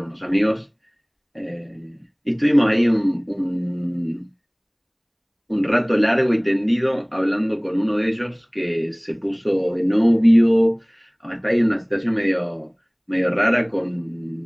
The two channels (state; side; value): identical; both; correlation 1.00